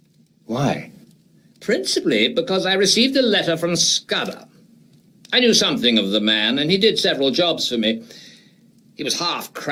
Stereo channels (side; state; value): both; identical; correlation 1.00